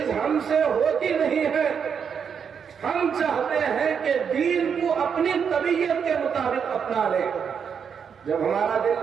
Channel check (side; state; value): left; quieter; 7.0 dB